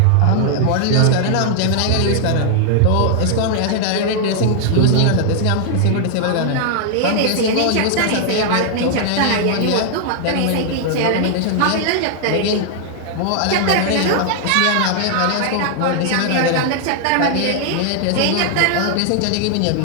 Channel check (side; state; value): both; different; correlation 0.00